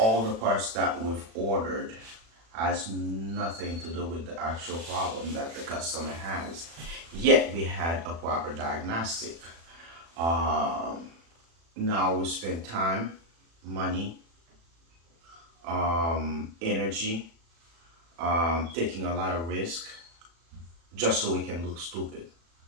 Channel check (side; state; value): left; late; 36 ms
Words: the parts that we've ordered has nothing to do with the actual problem that the customer has. Yet we had a proper diagnostic. Um, Now we spend time, money, energy, taking a lot of risk just so we can look stupid.